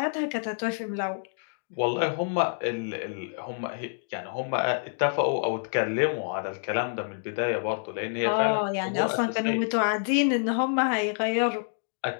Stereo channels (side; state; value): right; silent; digital silence